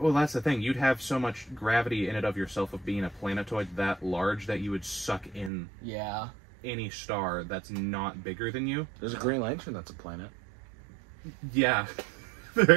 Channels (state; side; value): drops out; left; at 5.5 s